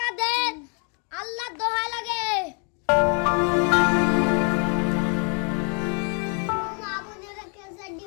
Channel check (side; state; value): right; quieter; 38.1 dB